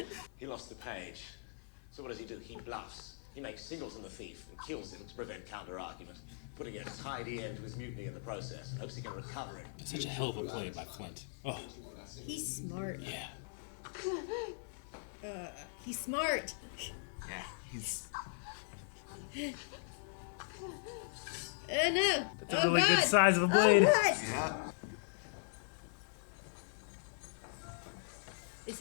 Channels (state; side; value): silent; right; 52 dB below the other